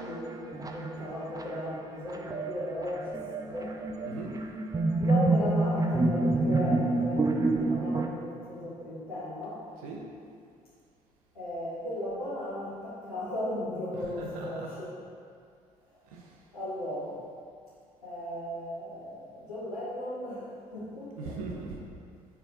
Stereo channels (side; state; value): both; normal; correlation 0.75